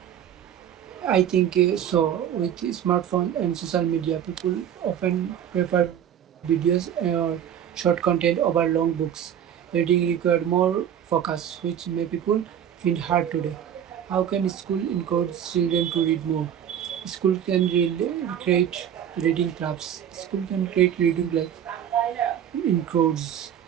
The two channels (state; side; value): quieter; left; 9.6 dB